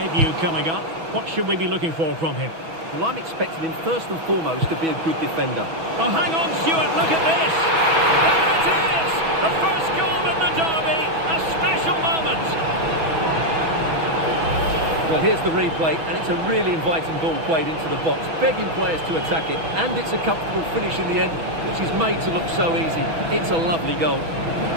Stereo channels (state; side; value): late; left; 6.1 ms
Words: coming up. What should we be looking for from him? Well, I'm expecting him first and foremost to be a good defender. Oh, hang on, Stuart, look at this! There it is! The first goal in the derby! A special moment! Well, here's the replay, and it's a really inviting ball played into the box, begging players to attack it, and it's a comfortable finish in the end, which is made to look so easy. It's a lovely goal.